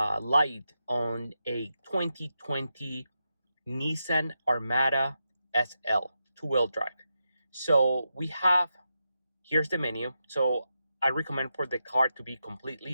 on a 2020 Nissan Armada SL two-wheel drive. So here's the menu. So I recommend for the car to be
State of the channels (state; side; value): inverted; both; correlation -0.87